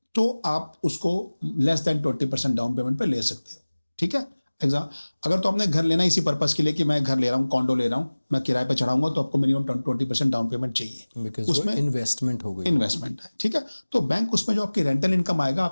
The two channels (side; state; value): both; inverted; correlation -1.00